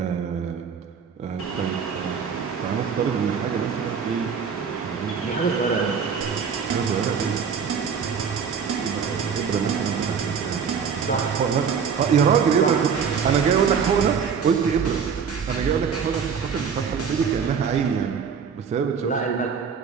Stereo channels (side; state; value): left; quieter; 6.5 dB